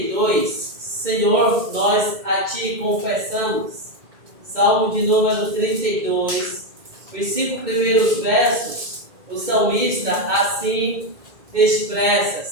Senhor, nós a Ti confessamos. Salmo de número 32, os 5 primeiros versos, o salmista assim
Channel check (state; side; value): late; left; 2.0 ms